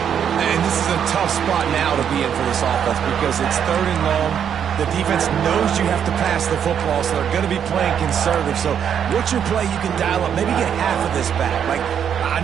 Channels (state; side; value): quieter; left; 8.4 dB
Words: And this is a tough spot now to be in for this offense because it's third and long. The defense knows you have to pass the football, so they're going to be playing conservative. So what's your play you can dial up? Maybe get half of this back. Like, I